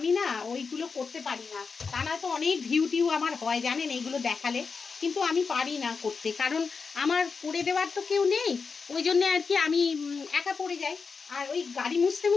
না ওইগুলো করতে পারি না। তা না তো অনেক ভিউ টিউ আমার হয় জানেন এইগুলো দেখালে, কিন্তু আমি পারি না করতে, কারণ আমার করে দেওয়ার তো কেউ নেই, ওই জন্যে আর কি আমি একা পড়ে যাই। আর ওই গাড়ি মুছতে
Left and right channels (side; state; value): right; quieter; 5.1 dB